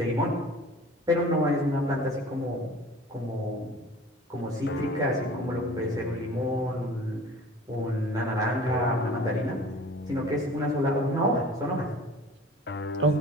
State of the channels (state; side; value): normal; both; correlation 0.45